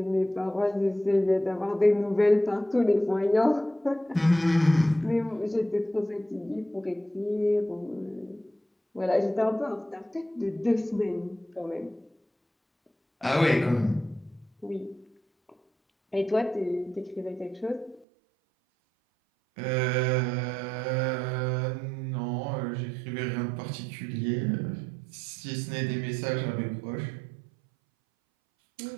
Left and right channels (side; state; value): left; drops out; at 18.1 s